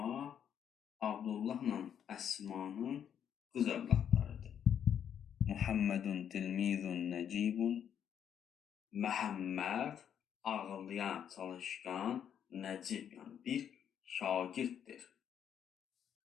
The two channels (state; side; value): quieter; right; 8.8 dB